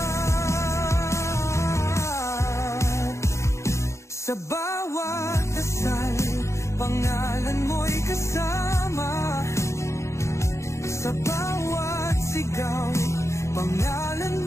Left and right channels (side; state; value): right; late; 0.14 ms